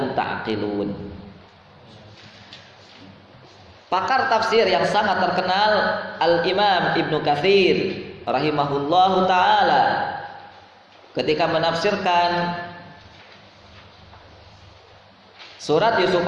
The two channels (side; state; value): both; identical; correlation 1.00